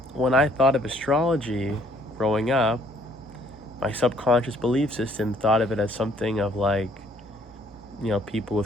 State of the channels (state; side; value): normal; both; correlation 0.63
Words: when I thought of astrology growing up, my subconscious belief system thought of it as something of like, people